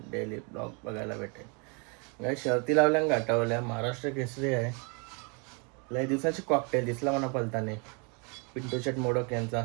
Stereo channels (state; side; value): quieter; left; 34.0 dB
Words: डेली ब्लॉग बघायला भेटेल. गाई शर्ती लावल्या गाठावल्या, महाराष्ट्र केसरी आहे. लय दिवसाची कॉकटेल दिसला म्हणा पलताने, पिंटू शेट मोडक यांचा